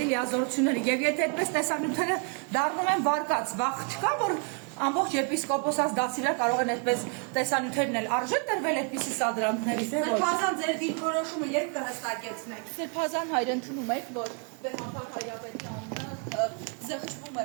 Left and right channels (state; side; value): quieter; left; 38.3 dB